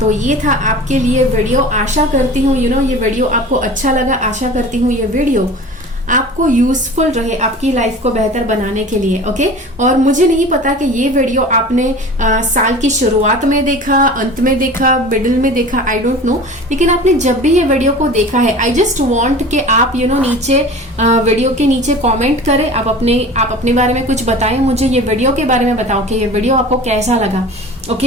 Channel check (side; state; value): both; normal; correlation 0.38